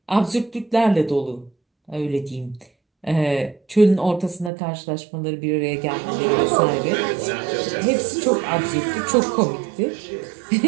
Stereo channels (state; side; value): drops out; left; at 4.5 s